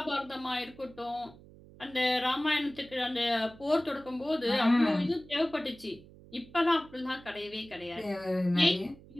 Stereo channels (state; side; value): noise; right; hum, 21 dB below the sound